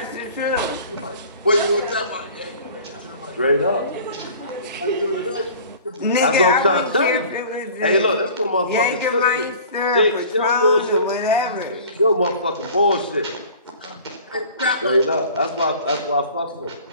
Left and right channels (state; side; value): inverted; both; correlation -0.45